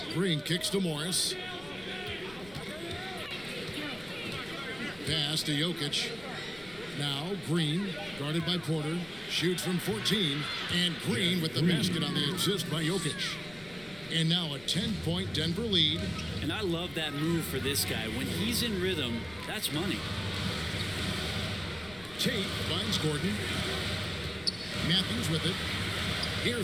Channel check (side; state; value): left; noise; rumble, 21 dB below the sound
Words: Green kicks to Morris. Pass to Jokic. Now Green, guarded by Porter, shoots from 14, and Green with the basket on the assist by Jokic. And now a 10-point Denver lead. And I love that move for this guy. When he's in rhythm, that's money. Tate finds Gordon. Matthews with it.